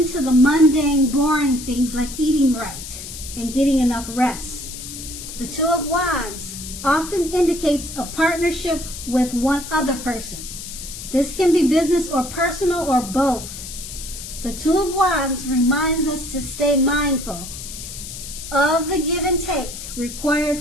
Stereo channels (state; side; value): noise; left; hiss, 10 dB below the sound